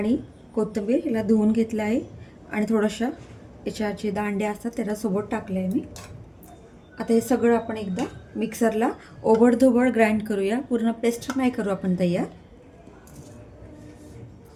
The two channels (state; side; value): identical; both; correlation 1.00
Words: कोथिंबीर हिला धुवून घेतलं आहे आणि थोडंसं याच्या जे दांड्या असतात त्याला सोबत टाकलं आहे मी। आता हे सगळं आपण एकदा मिक्सरला ओबडधोबड ग्राइंड करूया, पूर्ण पेस्ट नाही करू आपण तयार।